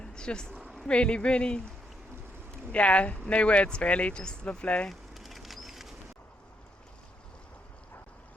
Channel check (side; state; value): both; normal; correlation 0.76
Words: It's just really, really, yeah, no words really, just lovely.